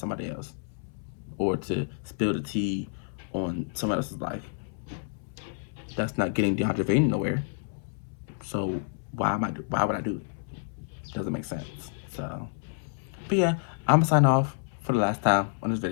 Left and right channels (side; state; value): right; silent; 59 dB below the other